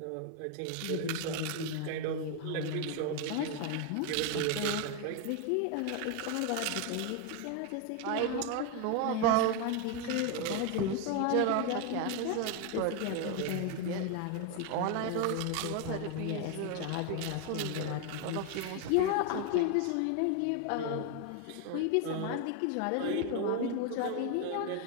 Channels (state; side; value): different; both; correlation 0.01